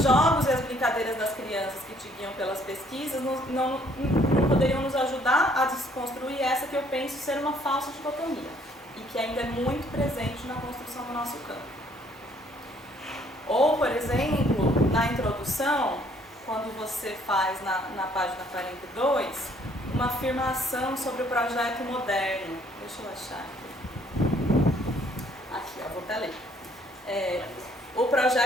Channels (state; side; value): normal; both; correlation 0.63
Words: jogos e as brincadeiras das crianças que te guiam pelas pesquisas não poderiam nos ajudar a desconstruir essa que eu penso ser uma falsa dicotomia e que ainda é muito presente na construção do nosso campo. Ou, por exemplo, na introdução, quando você faz na página 42, uma afirmação sobre o projeto moderno. Deixa eu achar aqui. Vou até ler. O